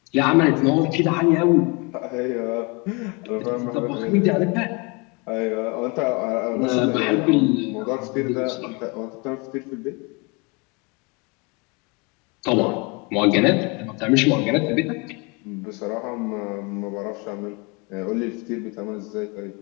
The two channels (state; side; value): quieter; right; 29.8 dB